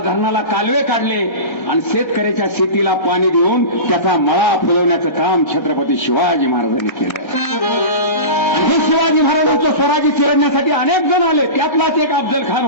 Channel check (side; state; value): right; late; 1.3 ms